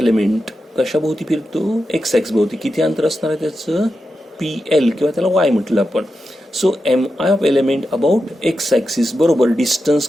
कशाभोवती फिरतो? एक्स एक्स भोवती. किती अंतर असणार आहे त्याचं? पी एल किंवा त्याला वाय म्हटलं आपण. So M I of element about X axis बरोबर डिस्टन्स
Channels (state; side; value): normal; both; correlation 0.89